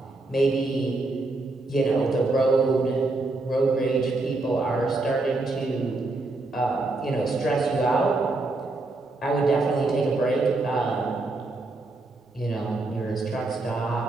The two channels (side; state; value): left; quieter; 3.2 dB